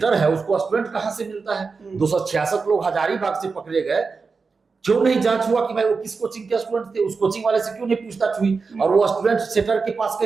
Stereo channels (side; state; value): left; quieter; 4.7 dB